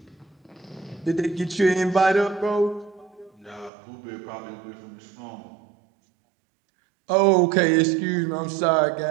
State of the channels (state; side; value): drops out; left; at 3.7 s